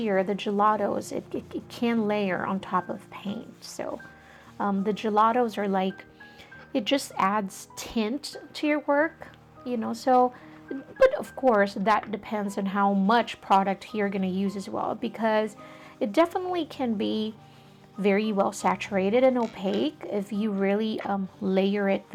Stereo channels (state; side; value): identical; both; correlation 1.00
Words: the gelatos, it can layer on top of paint. So the gelatos are like, it just adds tint to your work, you know. So, but of course that depends on how much product you're going to use as well, because it definitely can be very well saturated and opaque if you really layer it